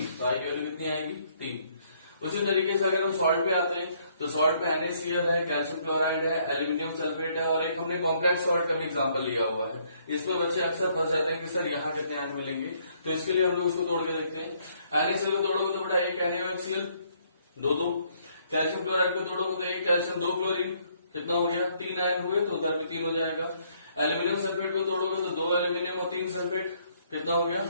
तो I की वैल्यू कितनी आएगी, 3। उसी तरीके से अगर हम सॉल्ट पे आते हैं, तो सॉल्ट में NaCl है, कैल्शियम क्लोराइड है, एल्यूमिनियम सल्फेट है, और एक हमने कॉम्प्लेक्स सॉल्ट का भी एग्जांपल लिया हुआ है। इसमें बच्चे अक्सर फंस जाते हैं कि सर यहाँ कितने आयन मिलेंगे, तो इसके लिए हम लोग इसको तोड़ के देखते हैं। NaCl को तोड़ोगे तो बेटा 1 NaOHCl, 2, कैल्शियम क्लोराइड को तोड़ोगे तो 1 कैल्शियम 2 क्लोरीन, कितना हो गया, 3 आयन हुए, तो उधर भी 3 हो जाएगा। एल्यूमिनियम सल्फेट को तोड़ोगे तो 2 एल्यूमिनियम और 3 सल्फेट, कितना हो गया,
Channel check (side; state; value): both; inverted; correlation -0.67